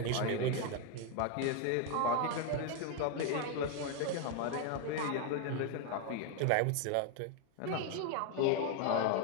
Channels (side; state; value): both; different; correlation 0.01